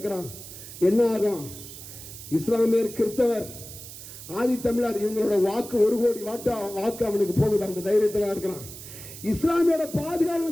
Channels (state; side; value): noise; right; hiss, 13 dB below the sound